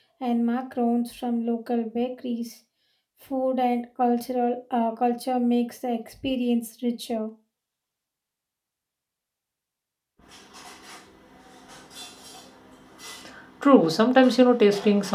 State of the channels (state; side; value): identical; both; correlation 1.00